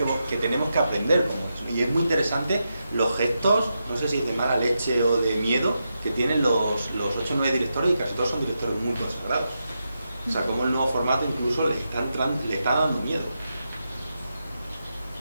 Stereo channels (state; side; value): inverted; both; correlation -0.87